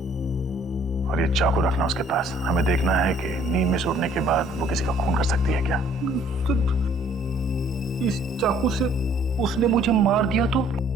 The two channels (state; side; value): normal; both; correlation 0.59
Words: और ये चाकू रखना उसके पास। हमें देखना है कि नींद में से उठने के बाद वो किसी का खून कर सकती है क्या। तो इस चाकू से उसने मुझे मार दिया तो?